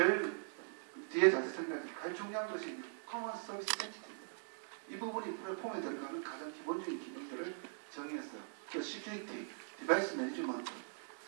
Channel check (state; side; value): silent; left; digital silence